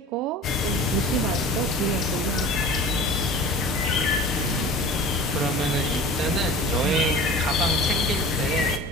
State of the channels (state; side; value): normal; both; correlation 0.40